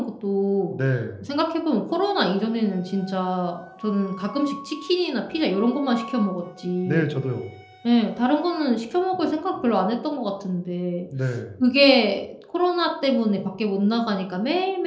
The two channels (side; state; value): both; identical; correlation 1.00